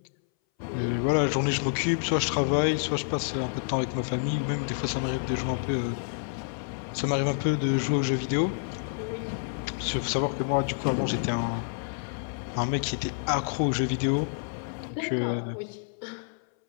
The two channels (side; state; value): right; silent; 59 dB below the other